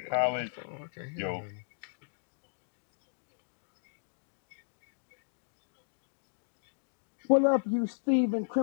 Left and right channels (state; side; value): silent; right; digital silence